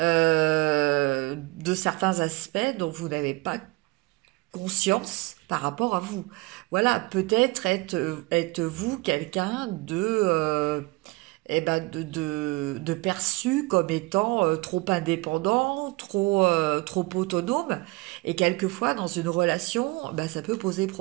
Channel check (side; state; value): left; quieter; 23.9 dB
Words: certains aspects dont vous n'avez pas conscience par rapport à vous. Voilà, peut-être êtes-vous quelqu'un de perçu comme étant trop indépendant, trop autonome, et quelquefois dans une relation, ça peut poser